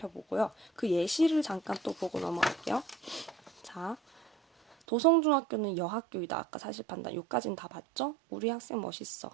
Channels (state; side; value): drops out; left; at 4.8 s